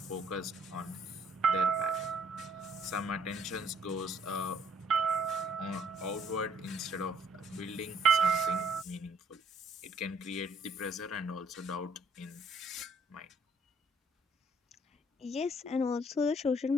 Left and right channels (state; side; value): normal; both; correlation 0.65